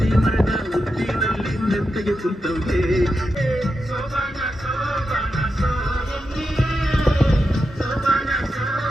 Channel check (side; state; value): both; normal; correlation 0.88